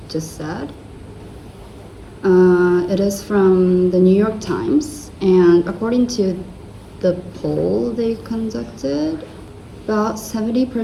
just said. It is from the New York Times, and according to the poll they conducted, about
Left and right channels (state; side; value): identical; both; correlation 1.00